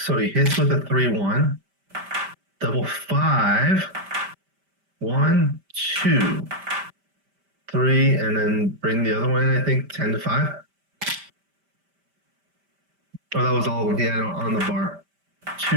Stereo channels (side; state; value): left; late; 5.1 ms